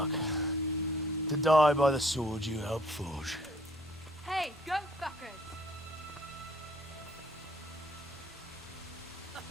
To die by the sword you helped forge. Hey, go fuckers!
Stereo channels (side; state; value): both; normal; correlation 0.60